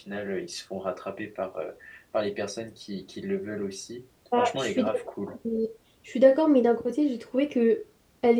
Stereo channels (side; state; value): both; identical; correlation 1.00